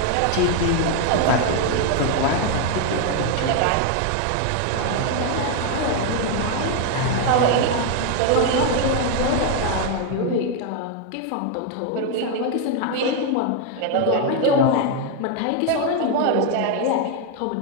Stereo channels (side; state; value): both; different; correlation 0.01